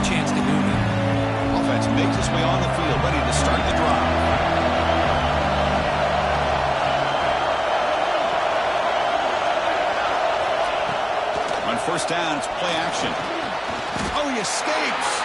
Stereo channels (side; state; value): both; identical; correlation 1.00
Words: chance to do now. Offense makes its way on the field, ready to start the drive. On first down, it's play action. Oh, he escapes.